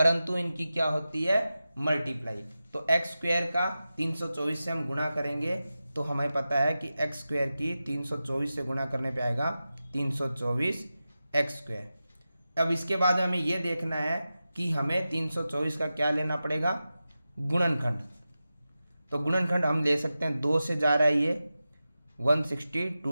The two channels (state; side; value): inverted; both; correlation -0.93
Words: इनकी क्या होती है मल्टीप्लाई। तो एक्स स्क्वायर का 324 से हम गुणा करेंगे तो हमें पता है कि एक्स स्क्वायर की 324 से गुणा करने पे आएगा 324 एक्स स्क्वायर। अब इसके बाद हमें यह देखना है कि हमें 324 का क्या लेना पड़ेगा गुणनखंड। तो गुणनखंड हम ले सकते हैं, 2 से जा रहा है ये